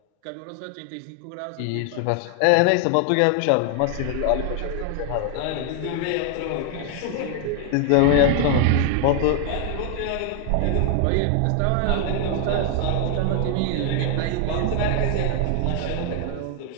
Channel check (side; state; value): both; different; correlation 0.00